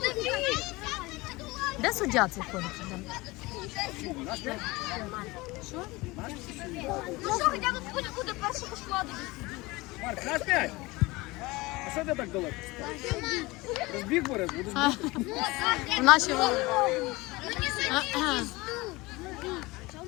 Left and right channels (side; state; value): right; quieter; 22.2 dB